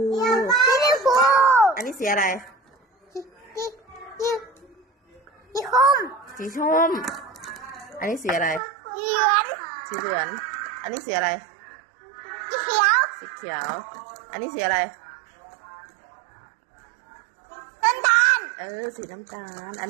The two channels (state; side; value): drops out; left; at 8.6 s